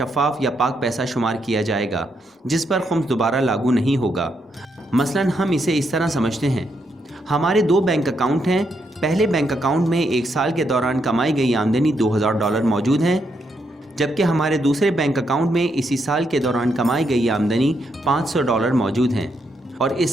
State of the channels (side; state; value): both; normal; correlation 0.79